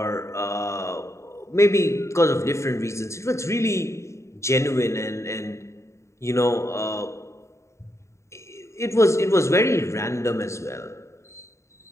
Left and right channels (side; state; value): right; late; 0.14 ms